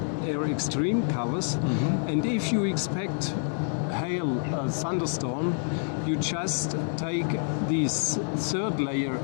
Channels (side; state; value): right; silent; 60 dB below the other